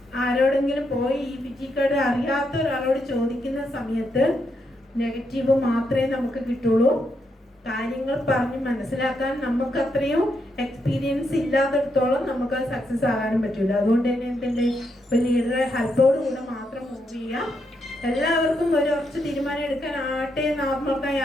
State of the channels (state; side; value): normal; both; correlation 0.80